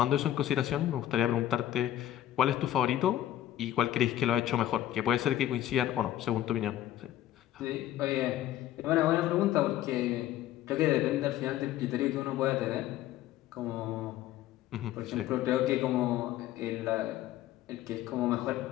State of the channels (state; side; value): quieter; right; 12.9 dB